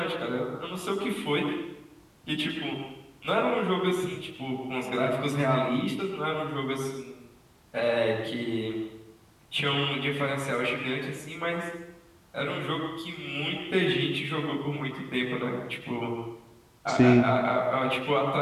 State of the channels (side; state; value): both; identical; correlation 1.00